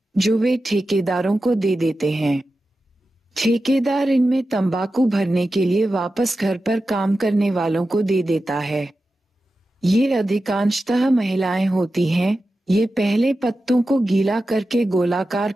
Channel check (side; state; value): both; normal; correlation 0.92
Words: जो वे ठेकेदारों को दे देते हैं। ठेकेदार इनमें तंबाकू भरने के लिए वापस घर पर काम करने वालों को दे देता है। ये अधिकांशतः महिलाएं होती हैं। ये पहले पत्तों को गीला करके गोलाकार